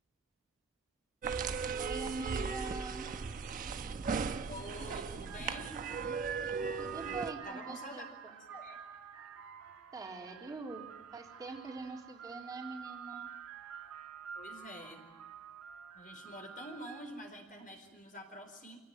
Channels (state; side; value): quieter; left; 4.5 dB